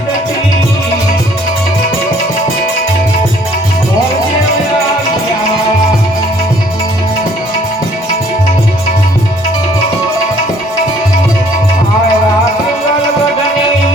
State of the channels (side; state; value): both; normal; correlation 0.60